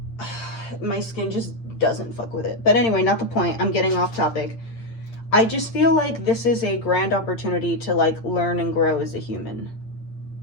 my skin just doesn't fuck with it. But anyway, not the point. I'm getting off topic. I just feel like this is a grand opportunity to like learn and grow as a human.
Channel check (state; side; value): late; right; 8.8 ms